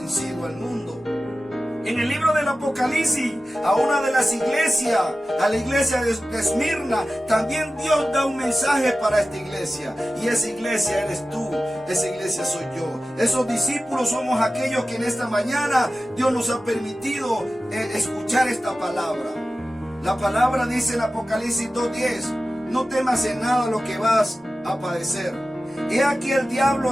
al mundo. En el libro del Apocalipsis, a una de las iglesias, a la iglesia de Esmirna, también Dios da un mensaje para esta iglesia. Y esa iglesia eres tú, esa iglesia soy yo. Esos discípulos somos aquellos que en esta mañana Dios nos ha permitido escuchar esta palabra. La palabra dice en Apocalipsis 2:10: no temas en nada lo que vas a padecer. He aquí el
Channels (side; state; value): both; normal; correlation 0.94